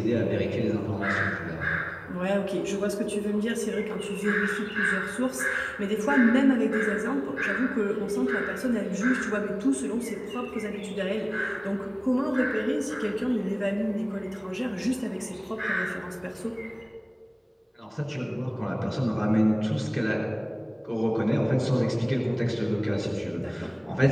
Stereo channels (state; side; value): identical; both; correlation 1.00